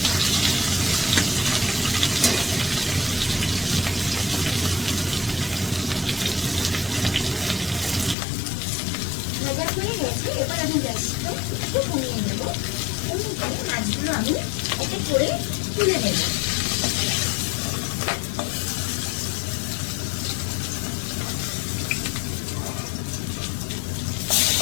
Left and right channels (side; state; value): right; drops out; at 8.2 s